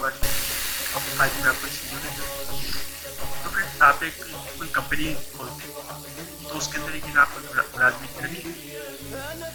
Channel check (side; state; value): both; identical; correlation 1.00